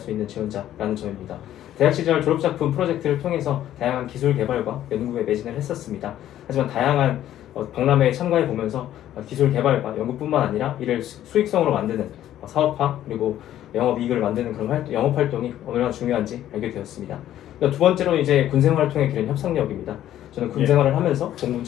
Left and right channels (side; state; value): right; quieter; 12.2 dB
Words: 있는 지원자라는 점입니다. 대학 시절 졸업작품 프로젝트를 통해서 다양한 기술 개발과 연구에 매진을 했었습니다. 하지만 다양한 박람회에 참가해 보면서 기술 개발과 연구뿐만 아니라 이를 수익성으로 만드는 사업화 그리고 영업이익을 만드는 그런 영업 활동이 얼마나 중요한지 알게 되었습니다. 두 번째로 이제 군생활을 통해 기른 협상력입니다. 저는 군생활을 하면서 공군